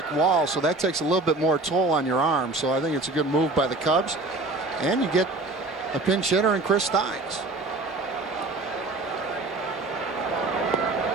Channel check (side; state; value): left; quieter; 3.2 dB